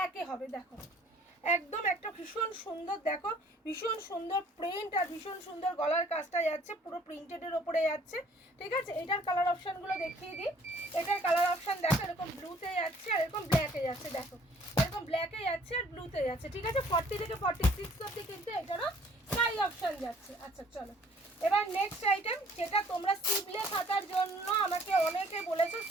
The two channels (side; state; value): both; normal; correlation 0.58